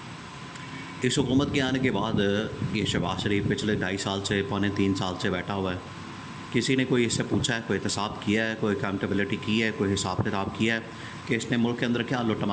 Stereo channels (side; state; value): both; identical; correlation 1.00